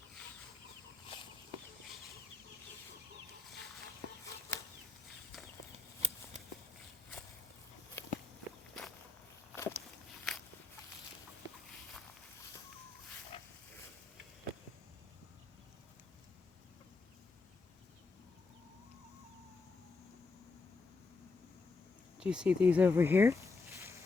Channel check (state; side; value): quieter; right; 3.8 dB